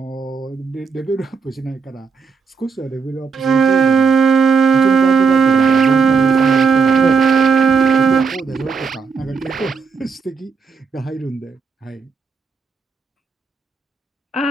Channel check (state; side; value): quieter; left; 5.2 dB